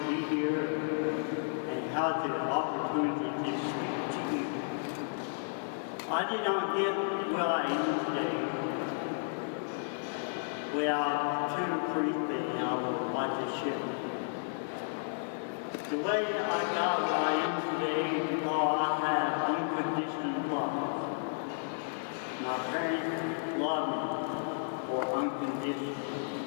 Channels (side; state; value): right; silent; digital silence